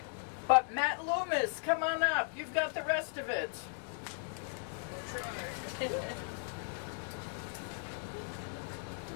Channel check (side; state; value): right; silent; 53 dB below the other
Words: but Matt Loomis, come on up. You've got the rest of it.